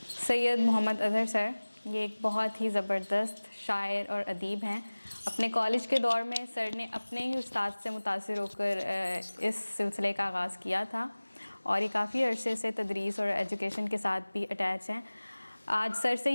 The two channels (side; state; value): both; inverted; correlation -1.00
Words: سید محمد اظہر سر. یہ ایک بہت ہی زبردست شاعر اور ادیب ہیں. اپنے کالج کے دور میں سر نے اپنے ہی استاد سے متاثر ہو کر اس سلسلے کا آغاز کیا تھا اور یہ کافی عرصے سے تدریس اور ایجوکیشن کے ساتھ بھی اٹیچ ہیں. آج سر سے